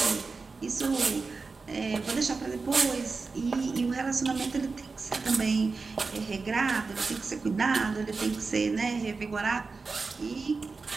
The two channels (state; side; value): quieter; left; 4.3 dB